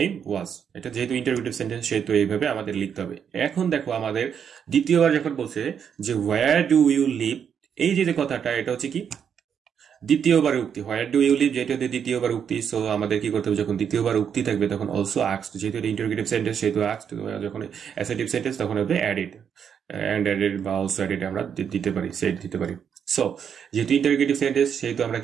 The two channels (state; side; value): quieter; left; 7.8 dB